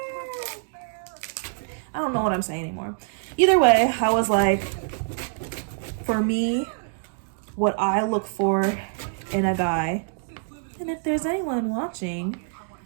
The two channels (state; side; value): silent; left; digital silence